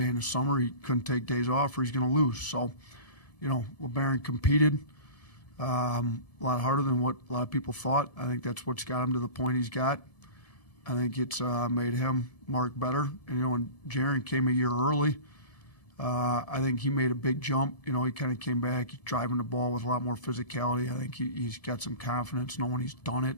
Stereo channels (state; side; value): late; right; 1.7 ms